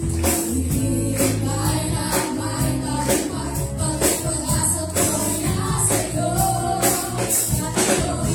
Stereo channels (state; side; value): identical; both; correlation 1.00